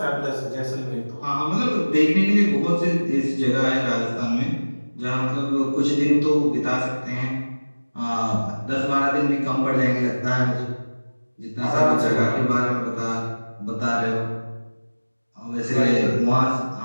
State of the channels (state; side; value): inverted; both; correlation -1.00